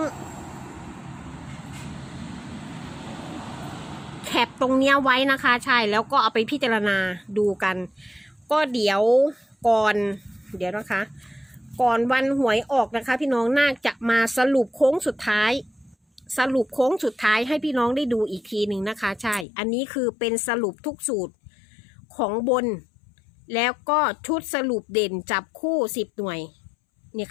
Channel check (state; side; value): drops out; right; at 19.5 s